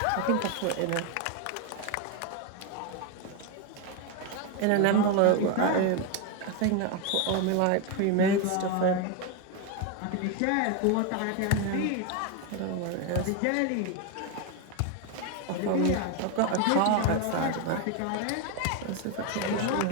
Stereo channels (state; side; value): different; both; correlation 0.02